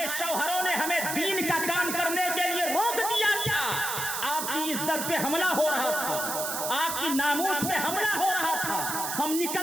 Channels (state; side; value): noise; right; hiss, 3 dB below the sound